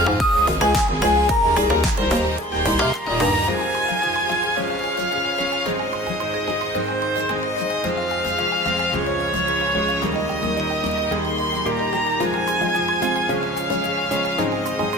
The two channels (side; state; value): both; normal; correlation 0.48